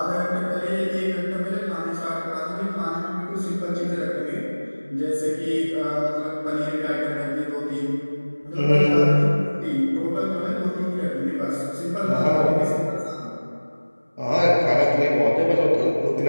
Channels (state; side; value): inverted; both; correlation -1.00